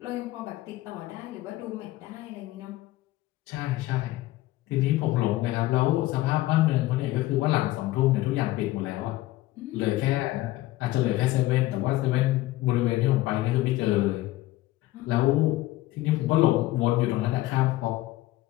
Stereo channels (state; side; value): quieter; right; 17.1 dB